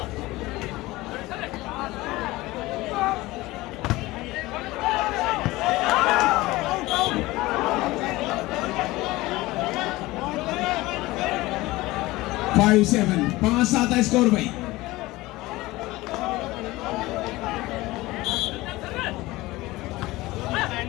फाइव 7 5-7 है स्कोर भाई।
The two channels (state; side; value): quieter; right; 19.5 dB